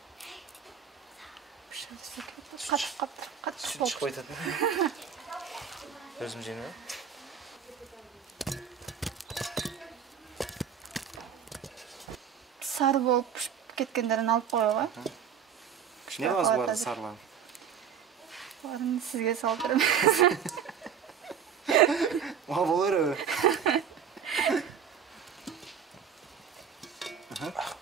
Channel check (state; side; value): quieter; left; 7.8 dB